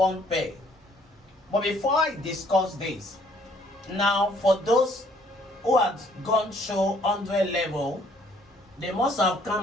pay. But before I discuss this, now for those who have gone through 100 level, they must have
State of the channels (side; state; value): both; normal; correlation 0.62